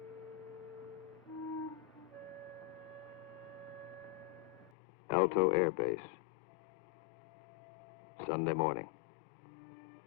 Alto Air Base. Sunday morning.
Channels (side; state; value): right; drops out; at 4.7 s